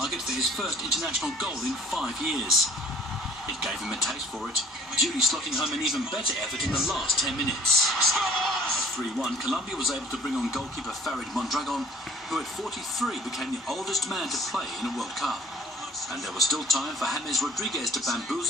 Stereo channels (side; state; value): both; normal; correlation 0.53